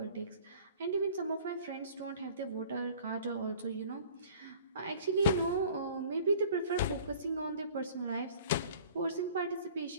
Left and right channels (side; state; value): both; inverted; correlation -0.48